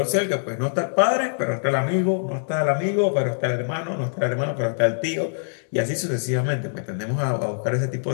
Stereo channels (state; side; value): silent; right; digital silence